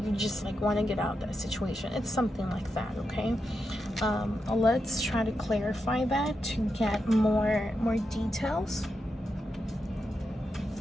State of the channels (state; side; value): normal; both; correlation 0.86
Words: you just like want to get out of that situation. It's something like that. Okay, let's try to clarify that to get more details.